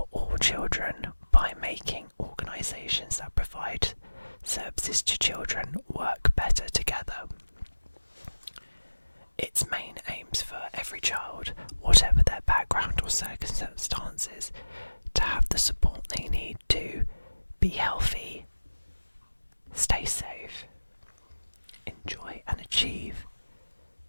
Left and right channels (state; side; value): inverted; both; correlation -1.00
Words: all children by making organisations that provide services to children work better together. Its main aims for every child, whatever their background or circumstances, to have the support they need to be healthy, stay safe, enjoy and achieve,